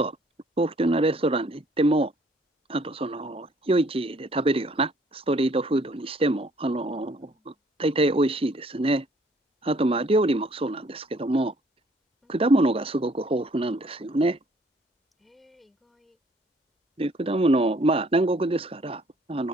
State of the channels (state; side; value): normal; both; correlation 0.61